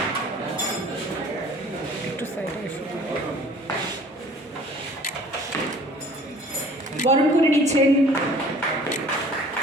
একটু সাইডে এসে বরণ করে নিচ্ছেন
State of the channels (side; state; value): both; normal; correlation 0.50